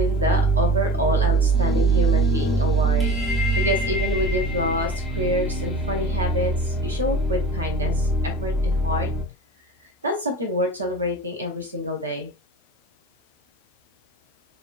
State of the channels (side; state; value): both; normal; correlation 0.37